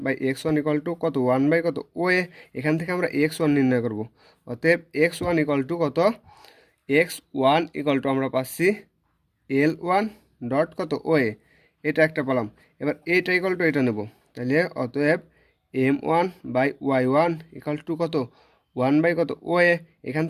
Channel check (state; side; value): identical; both; correlation 1.00